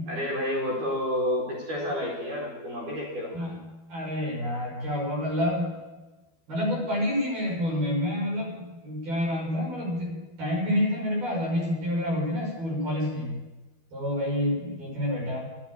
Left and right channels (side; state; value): left; late; 12 ms